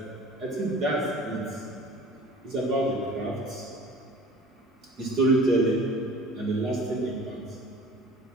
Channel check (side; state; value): both; normal; correlation 0.45